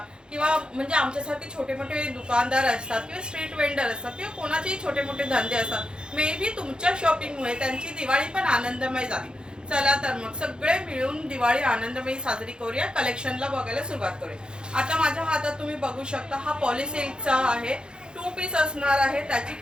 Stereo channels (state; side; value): late; left; 0.049 ms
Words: किंवा म्हणजे आमच्यासारखे छोटे मोठे दुकानदार असतात किंवा स्ट्रीट वेंडर असतात किंवा कोणाचेही छोटे मोठे धंदे असतात, मे बी तुमच्या शॉपिंगमुळे त्यांची दिवाळी पण आनंदमय झाली। चला तर मग सगळे मिळून दिवाळी आनंदमयी साजरी करूया। कलेक्शनला बघायला सुरुवात करूया। आता माझ्या हातात तुम्ही बघू शकता, हा पॉलिसिल्कचा आहे, 2 पीस असणार आहे। त्याची